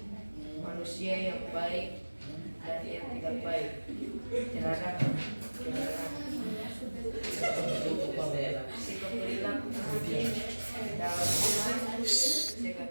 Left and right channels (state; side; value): inverted; both; correlation -1.00